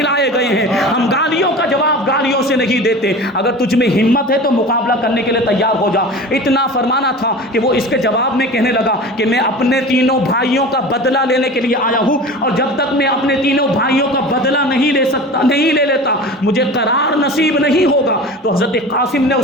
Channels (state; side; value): normal; both; correlation 0.35